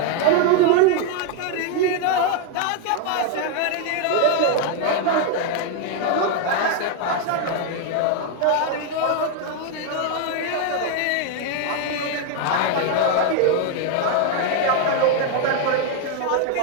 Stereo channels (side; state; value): both; different; correlation 0.01